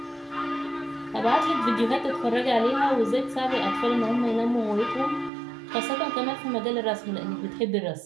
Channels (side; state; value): left; drops out; at 5.3 s